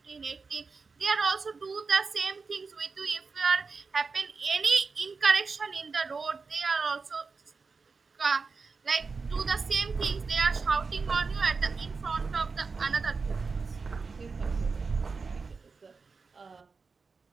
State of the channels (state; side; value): quieter; left; 4.6 dB